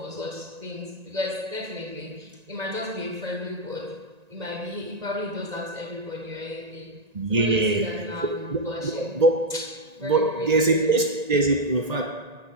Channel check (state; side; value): late; left; 1.9 ms